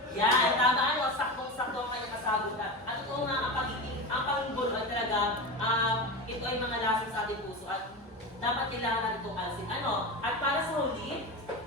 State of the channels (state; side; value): normal; both; correlation 0.24